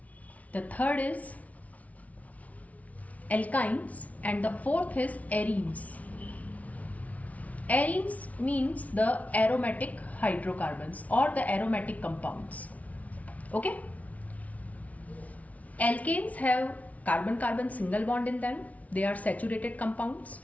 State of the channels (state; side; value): late; right; 0.069 ms